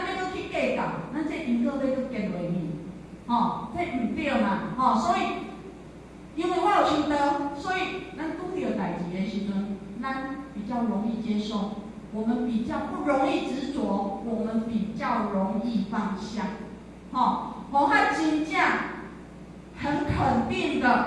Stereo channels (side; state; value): both; identical; correlation 1.00